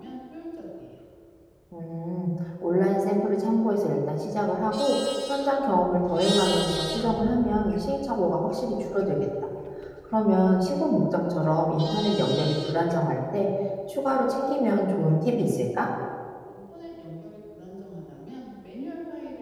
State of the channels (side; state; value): both; identical; correlation 1.00